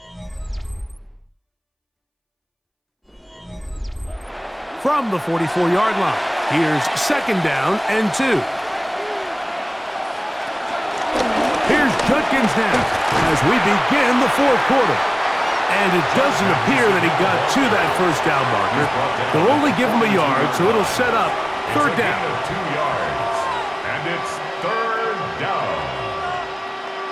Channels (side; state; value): both; identical; correlation 1.00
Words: From the 44-yard line, here's 2nd down and 2. Here's Judkins now as we begin the 4th quarter. And it doesn't appear that he got to that first down marker. They'll only give him a yard, so it'll set up 3rd down. 2 yards. And it's 3rd down.